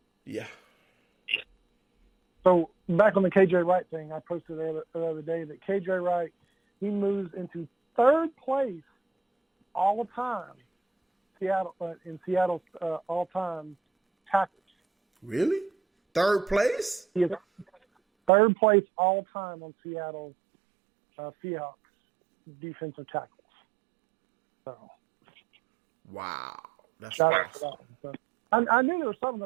yeah. So back on the KJ Wright thing, I posted the other day that KJ Wright, he moves into 3rd place all the time. In Seattle's all-time tackles. Really? 3rd place? He is 3rd place all-time on Seattle Seahawks defensive tackles. So, wow, that's shout awesome. out to that one. So, I knew there was something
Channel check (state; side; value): drops out; left; at 18.3 s